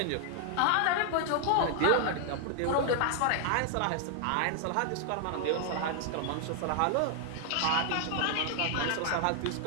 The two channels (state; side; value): different; both; correlation 0.00